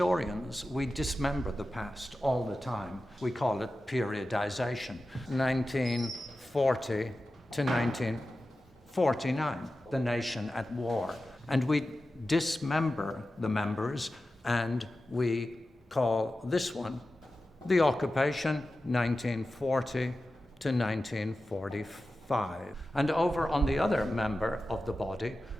we dismember the past all the time. We call it periodization. 1940 to 1949, the nation at war. And we dismember the members, and we call this one the occupation, 1940 to 1945. And over on the other member of the body,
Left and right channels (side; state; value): both; normal; correlation 0.93